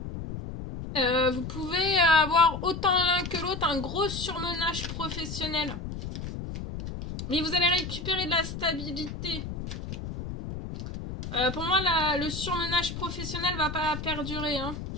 Vous pouvez avoir autant l'un que l'autre un gros surmenage professionnel. Mais vous allez récupérer de la stabilité. Pour moi, le surmenage professionnel va pas perdurer. Hein.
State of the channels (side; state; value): left; noise; rumble, 7 dB below the sound